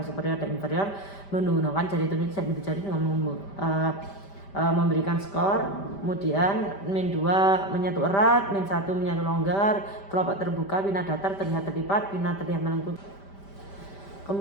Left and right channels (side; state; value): right; late; 5.1 ms